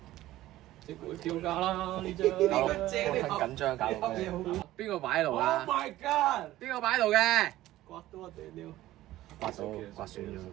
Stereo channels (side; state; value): left; quieter; 15.4 dB